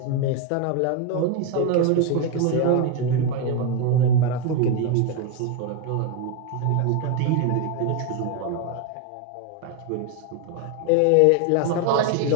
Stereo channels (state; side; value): different; both; correlation 0.02